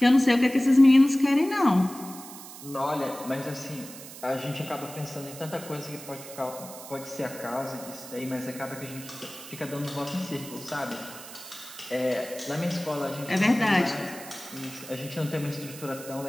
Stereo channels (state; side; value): noise; right; hiss, 14 dB below the sound